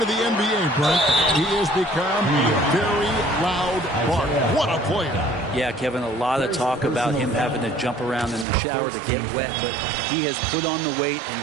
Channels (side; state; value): left; drops out; at 8.5 s